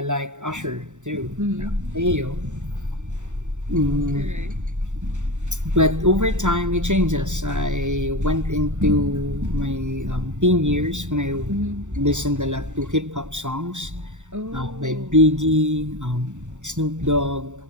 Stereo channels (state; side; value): late; left; 0.84 ms